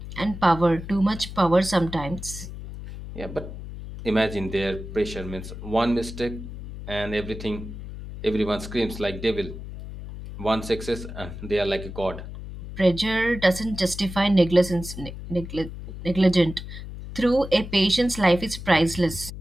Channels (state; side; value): noise; left; hum, 10 dB below the sound